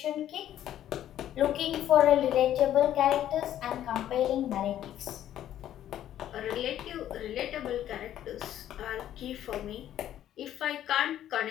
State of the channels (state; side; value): quieter; right; 11.7 dB